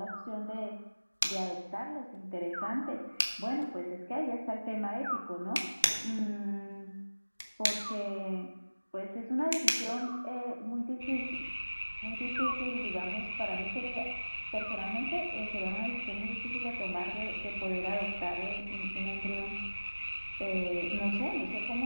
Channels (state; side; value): inverted; both; correlation -1.00